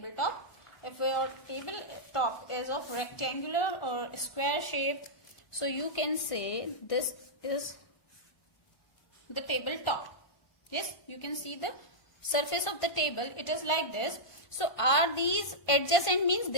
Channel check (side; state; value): right; late; 1.5 ms